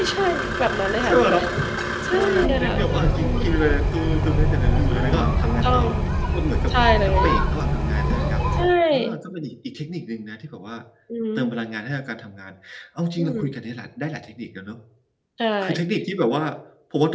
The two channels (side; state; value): both; identical; correlation 1.00